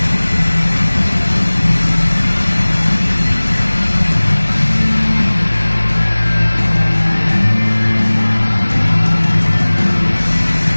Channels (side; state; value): both; inverted; correlation -1.00